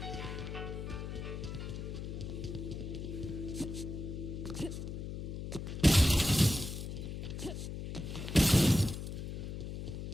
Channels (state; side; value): noise; left; hum, 6 dB below the sound